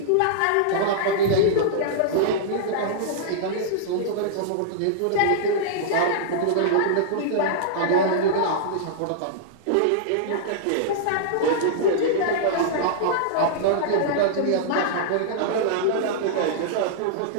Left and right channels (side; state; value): both; different; correlation -0.02